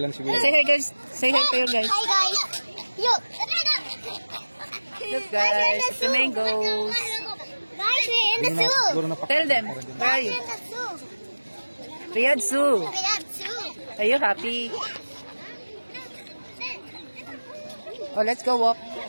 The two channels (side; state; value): both; inverted; correlation -1.00